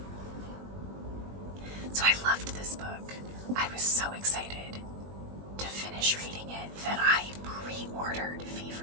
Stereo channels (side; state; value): left; late; 21 ms